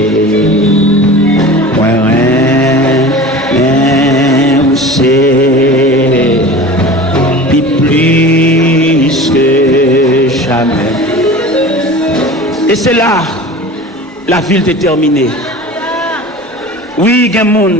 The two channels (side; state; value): both; normal; correlation 0.37